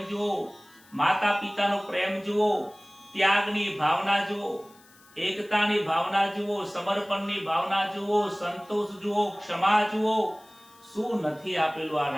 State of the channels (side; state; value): left; noise; hiss, 27 dB below the sound